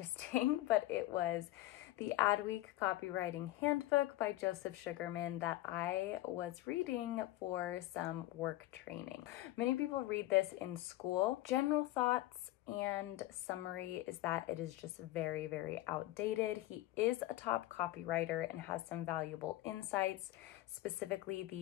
but it was the Adweek Copywriting Handbook by Joseph Sugarman that I was reading for some work training. Many people read this in school. General thoughts and summary is that it is just very, very outdated. He is a top copywriter and has some valuable insights, specifically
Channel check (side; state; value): right; quieter; 16.5 dB